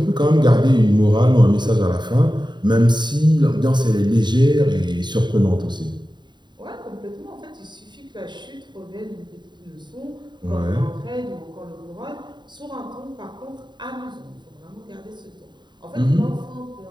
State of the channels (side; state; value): left; late; 0.22 ms